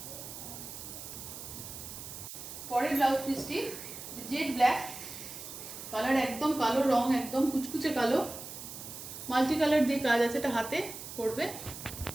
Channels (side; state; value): right; noise; hiss, 11 dB below the sound